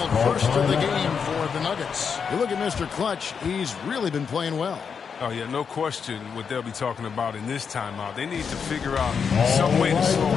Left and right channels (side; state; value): right; quieter; 6.4 dB